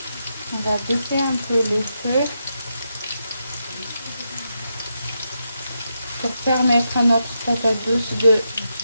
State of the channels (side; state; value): both; inverted; correlation -0.84